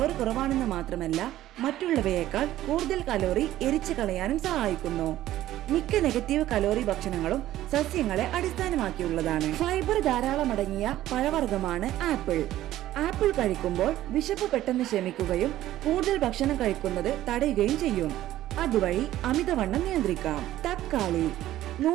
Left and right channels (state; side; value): quieter; left; 14.0 dB